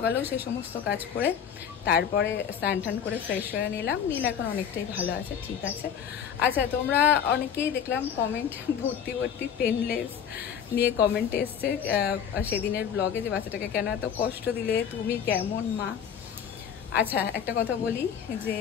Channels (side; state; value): right; quieter; 8.1 dB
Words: সেই সমস্ত কাজ করে তারপরে স্নান টান করে ফ্রেশ হয়ে নিলাম। নীল এখন অনেকটাই ভালো আছে, ঠিক আছে। আচ্ছা, তোমরা অনেকেই দেখলাম কমেন্ট ভর্তি ভর্তি পেনলেস নিয়ে কমেন্ট এসছে সেদিনের ব্লগে, যে বাচ্চাটাকে কেন এত কষ্ট দিলে, তুমি কেমন মা। আচ্ছা, একটা কথা বলি যে